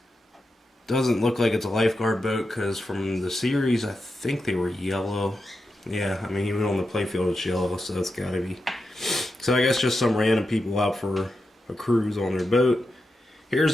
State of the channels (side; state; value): both; normal; correlation 0.88